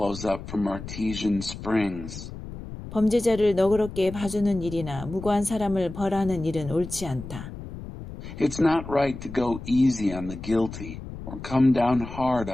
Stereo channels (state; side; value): noise; left; rumble, 11 dB below the sound